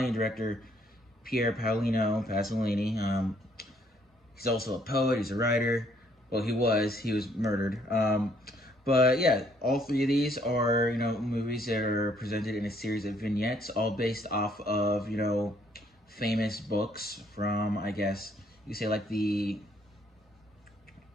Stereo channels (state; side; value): normal; both; correlation 0.66